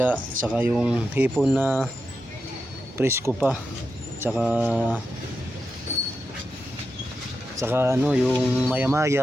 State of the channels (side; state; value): both; normal; correlation 0.88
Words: saka yung hipon na presko pa, saka ano, yung